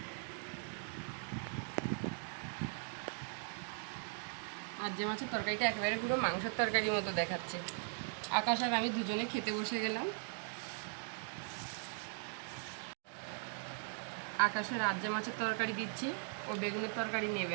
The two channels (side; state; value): left; silent; 51 dB below the other